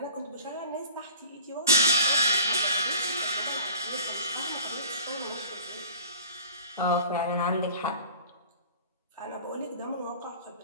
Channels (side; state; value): both; inverted; correlation -0.43